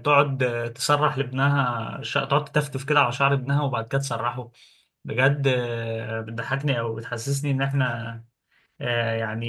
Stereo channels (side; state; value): both; identical; correlation 1.00